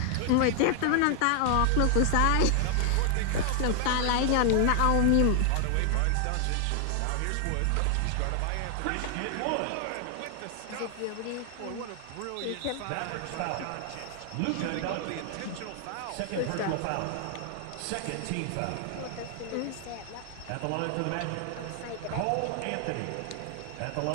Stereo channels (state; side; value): different; both; correlation 0.00